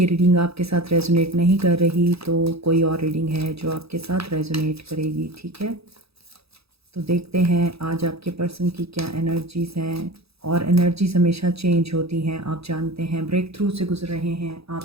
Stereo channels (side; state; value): left; late; 0.78 ms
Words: रीडिंग आपके साथ रेजोनेट नहीं कर रही तो कोई और रीडिंग है जो आपके साथ रेजोनेट करेगी, ठीक है? तो देखते हैं आज आपके पर्सन की क्या एनर्जीज़ हैं। और एनर्जीज़ हमेशा चेंज होती हैं, आप जानते हैं। ब्रेक थ्रू से गुजर रहे हैं